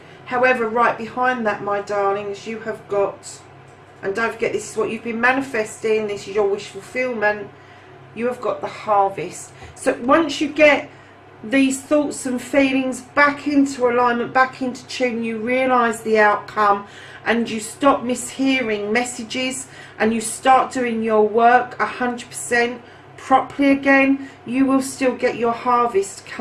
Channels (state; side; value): identical; both; correlation 1.00